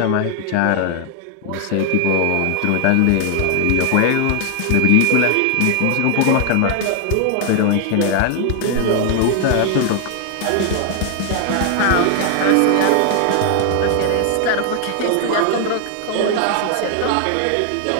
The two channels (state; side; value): different; both; correlation 0.00